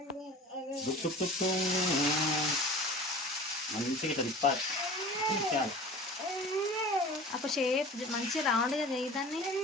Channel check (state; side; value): normal; both; correlation 0.40